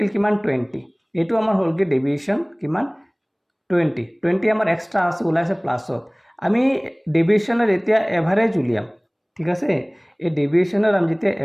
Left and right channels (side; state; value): both; identical; correlation 1.00